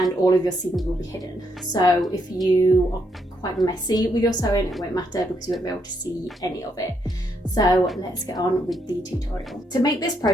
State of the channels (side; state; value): both; normal; correlation 0.76